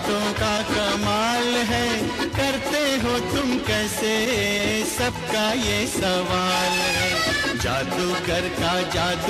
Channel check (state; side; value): identical; both; correlation 1.00